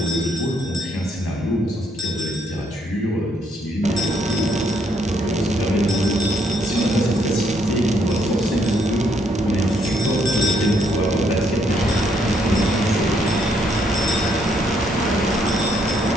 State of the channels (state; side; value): normal; both; correlation 0.71